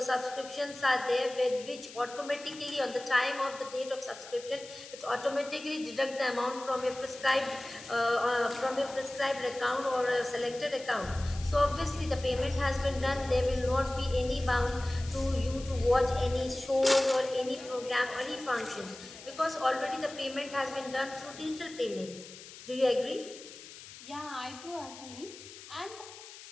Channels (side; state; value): left; noise; hiss, 16 dB below the sound